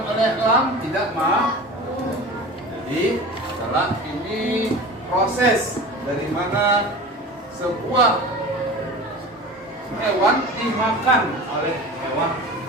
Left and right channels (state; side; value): normal; both; correlation 0.35